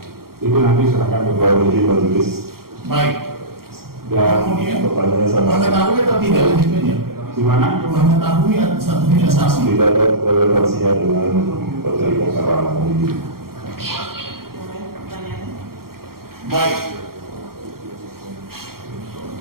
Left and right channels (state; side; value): late; left; 0.93 ms